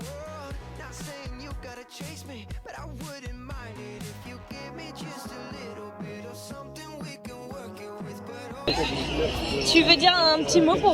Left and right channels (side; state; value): both; identical; correlation 1.00